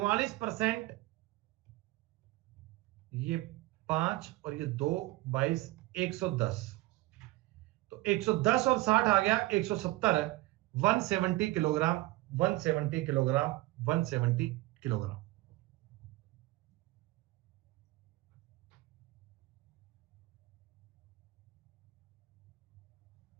ये 5 और ये 2, 22, 110। तो 110 और 60 आ गया 170। 170 किलोग्राम, 170 किलोग्राम, 170 किलोग्राम।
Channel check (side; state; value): left; quieter; 19.4 dB